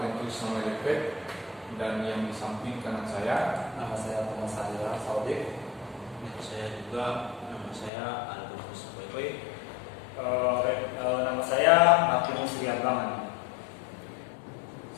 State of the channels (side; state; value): right; drops out; at 7.9 s